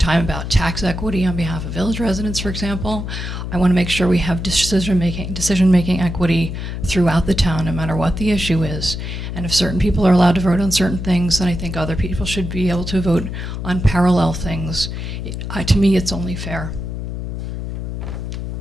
time about tax equity on behalf of village residents, for example. I want to make sure we have decision-making equity throughout the town, no matter what the issue is. And if certain people are allowed to vote on certain things, then I think other people should be able to vote on parallel things. To me, it's only fair.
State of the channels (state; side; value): noise; left; hum, 5 dB below the sound